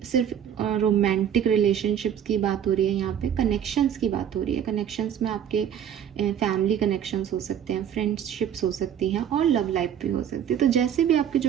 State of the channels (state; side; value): quieter; left; 9.2 dB